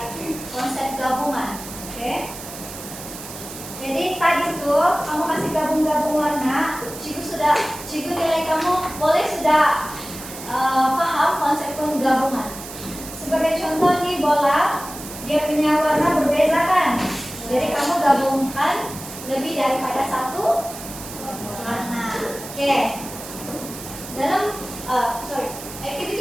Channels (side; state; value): right; noise; hiss, 12 dB below the sound